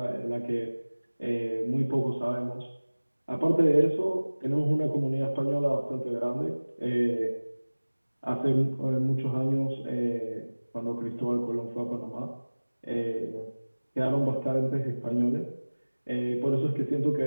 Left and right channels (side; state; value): both; inverted; correlation -1.00